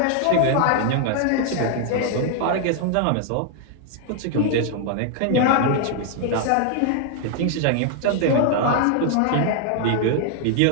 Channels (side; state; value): both; different; correlation 0.00